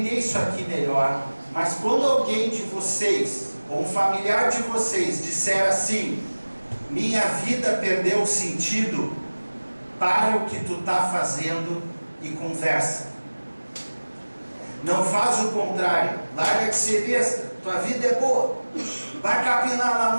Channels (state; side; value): inverted; both; correlation -1.00